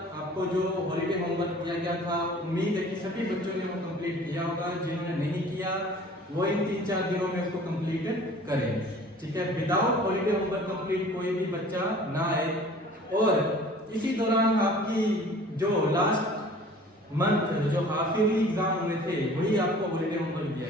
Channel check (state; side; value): normal; both; correlation 0.47